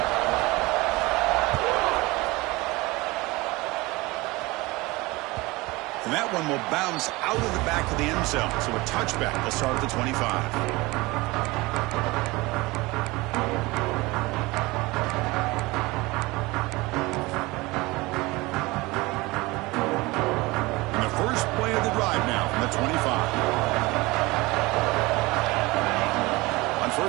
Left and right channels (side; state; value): left; quieter; 22.2 dB